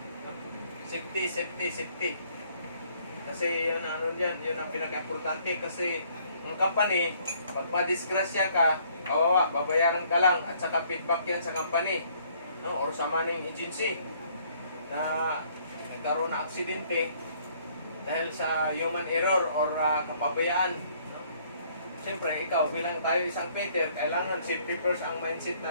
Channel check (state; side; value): inverted; both; correlation -0.63